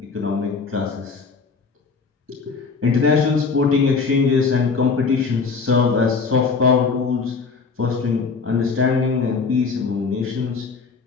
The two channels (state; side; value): quieter; right; 4.9 dB